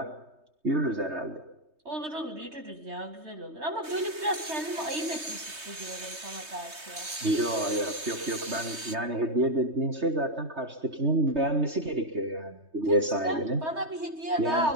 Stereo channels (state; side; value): late; left; 3.2 ms